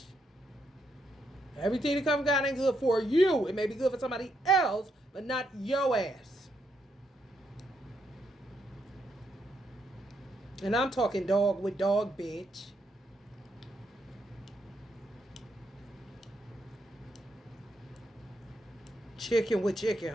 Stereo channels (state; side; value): normal; both; correlation 0.78